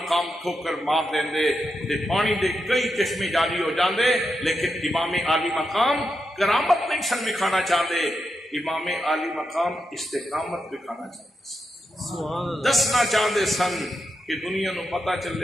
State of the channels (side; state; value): both; normal; correlation 0.86